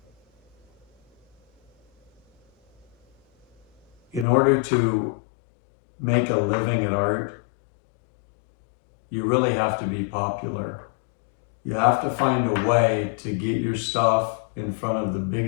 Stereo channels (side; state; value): right; drops out; at 4.2 s